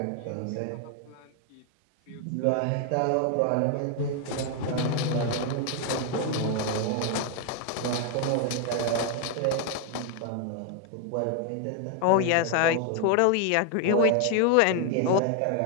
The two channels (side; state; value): both; different; correlation 0.01